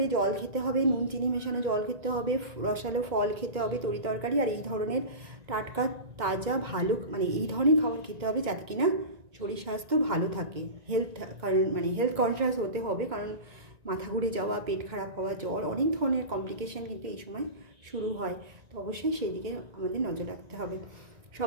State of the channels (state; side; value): late; left; 1.9 ms